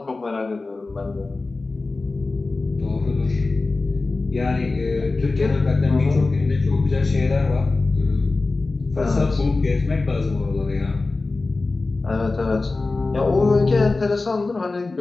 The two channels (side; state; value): right; quieter; 3.5 dB